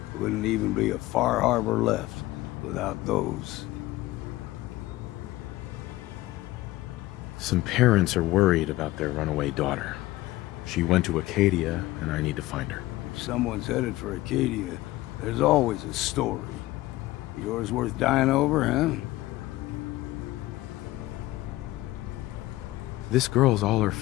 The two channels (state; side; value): quieter; right; 17.6 dB